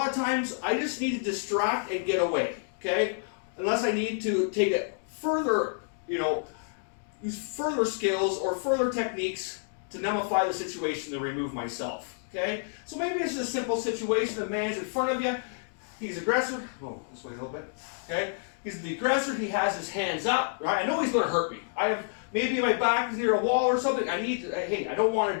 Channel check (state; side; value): silent; right; digital silence